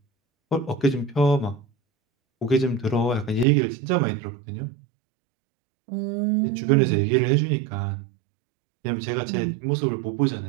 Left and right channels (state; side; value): drops out; left; at 3.5 s